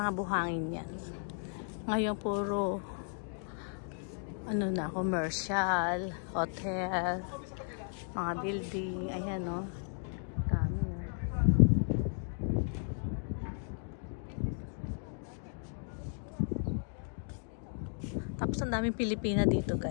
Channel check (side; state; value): right; silent; 54 dB below the other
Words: buhangin yan. Ngayon puro ano na, commercial, hotel, mga building. Ayan, no. Dami. Tapos ang daming Pilipina dito,